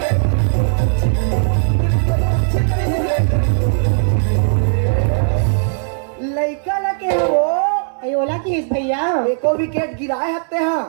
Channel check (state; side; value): silent; left; digital silence